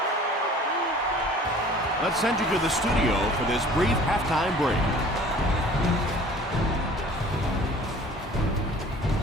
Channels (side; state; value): both; normal; correlation 0.48